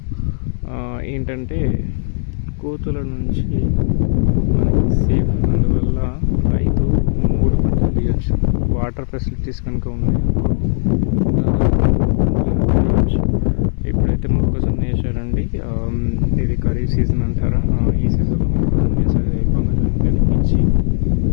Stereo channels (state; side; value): silent; right; digital silence